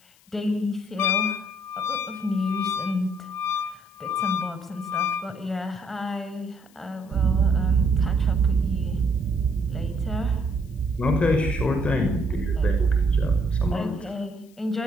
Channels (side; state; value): left; noise; hiss, 30 dB below the sound